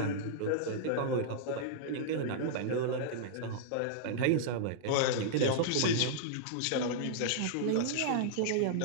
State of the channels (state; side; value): different; both; correlation -0.02